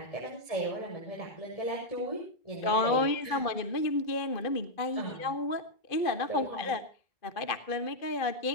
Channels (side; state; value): right; late; 2.4 ms